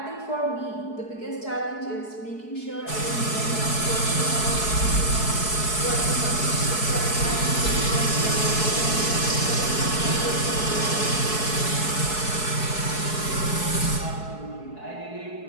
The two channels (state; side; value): late; right; 4.7 ms